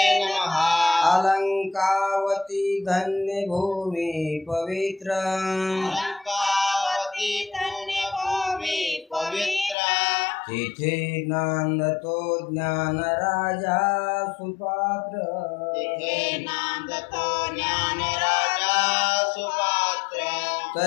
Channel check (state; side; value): drops out; right; at 9.8 s